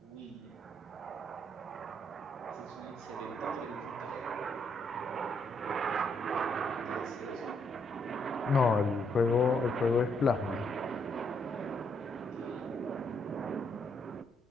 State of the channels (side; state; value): both; normal; correlation 0.74